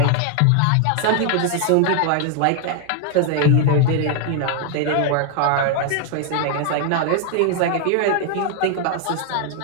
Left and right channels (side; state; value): both; different; correlation 0.00